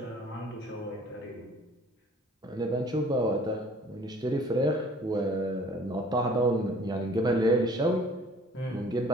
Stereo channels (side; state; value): both; normal; correlation 0.53